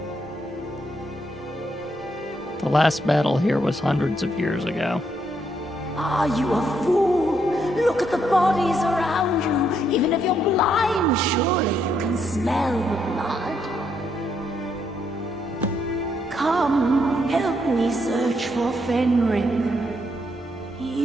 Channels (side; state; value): both; normal; correlation 0.75